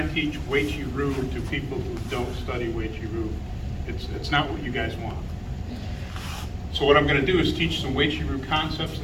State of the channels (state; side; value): identical; both; correlation 1.00